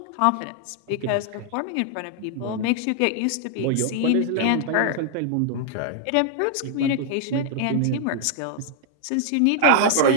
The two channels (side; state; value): both; different; correlation 0.00